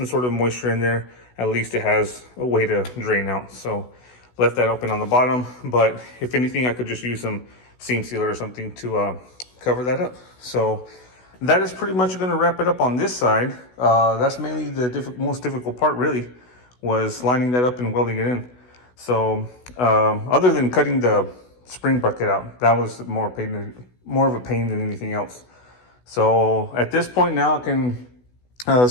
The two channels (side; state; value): right; late; 16 ms